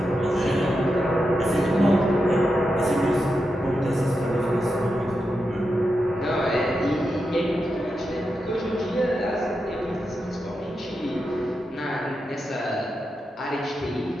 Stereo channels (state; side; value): normal; both; correlation 0.87